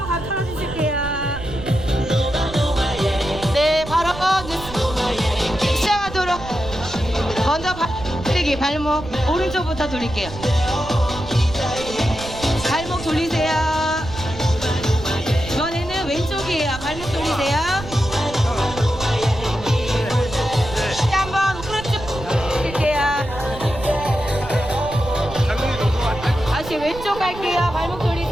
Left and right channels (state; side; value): noise; right; rumble, 12 dB below the sound